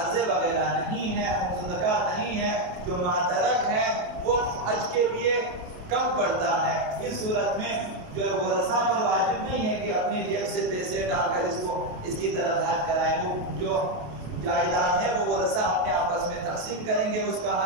وغیرہ نہیں ہے، خمس زکوٰۃ نہیں ہے، جو ماترک ہے وہ حج کے لیے کم پڑتا ہے، اس صورت میں جو ورثاء پر واجب نہیں ہے کہ اپنے جیب سے پیسے ڈال کر اس کی طرف حج کرائیں، وہ جو جائیداد ہے وہ ورثہ اپنے آپس میں تقسیم کریں گے، اس کا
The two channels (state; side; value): late; left; 28 ms